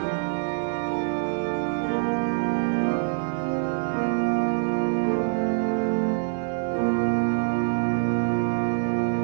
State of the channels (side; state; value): left; silent; 59 dB below the other